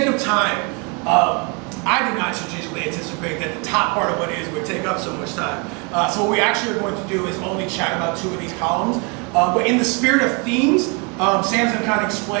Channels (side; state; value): left; quieter; 32.5 dB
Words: of time, I did not strategically anticipate that the top part of what is would take up so much time. So what we actually are going to do is only chat about 2 of these columns. But in the spirit of themes, Sam's going to kind of